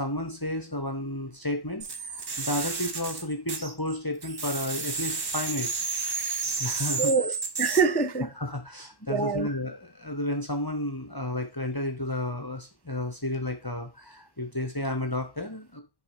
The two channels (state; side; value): late; right; 1.1 ms